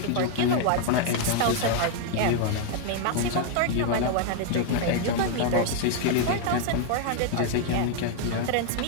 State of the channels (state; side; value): different; both; correlation 0.00